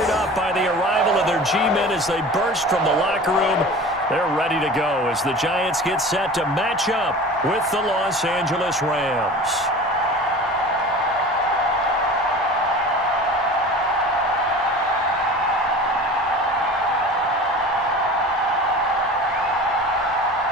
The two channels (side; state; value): both; normal; correlation 0.38